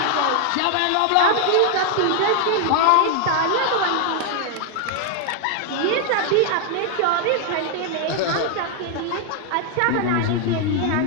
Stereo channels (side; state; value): both; different; correlation 0.00